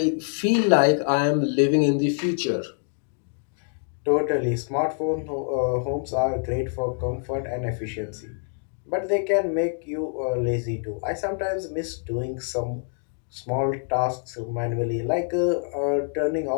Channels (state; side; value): silent; right; 61 dB below the other